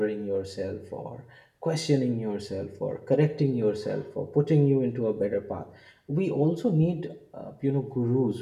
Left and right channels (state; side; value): identical; both; correlation 1.00